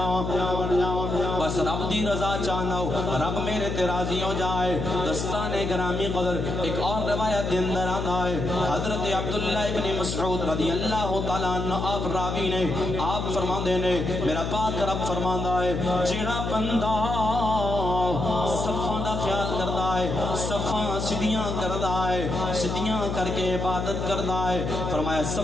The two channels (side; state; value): left; noise; hum, 3 dB below the sound